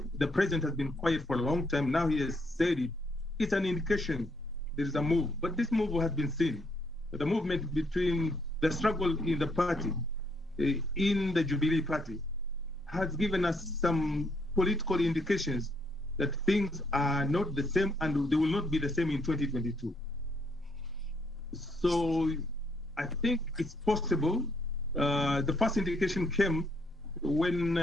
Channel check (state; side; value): normal; both; correlation 0.73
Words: the president has been quiet for a long time, now he has said it, it's an indication there is a move. But this move has been seen. The movement between the struggle in the party, in the Jubilee party, has given us some political indications that things are not the same and they will not be the same in 2022. So I think it's possible. The first indication came when